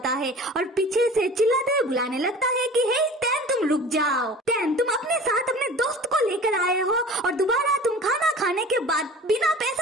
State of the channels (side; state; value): both; normal; correlation 0.42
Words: है और पीछे से चिल्लाते हुए बुलाने लगता है कि हे टैन, तुम रुक जाओ। टैन, तुम अपने साथ अपने दोस्त को लेकर आए हो और दोबारा तुम खाना खाने के बाद बिना